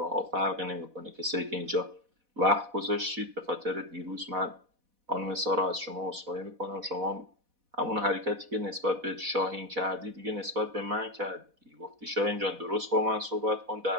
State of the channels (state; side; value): late; left; 4.1 ms